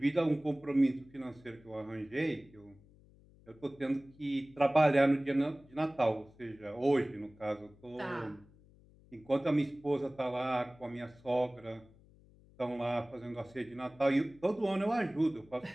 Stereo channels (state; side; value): noise; left; hum, 26 dB below the sound